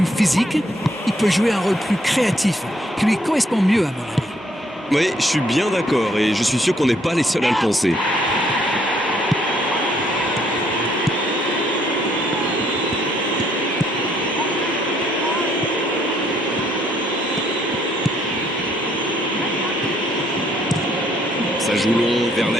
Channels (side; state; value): both; normal; correlation 0.68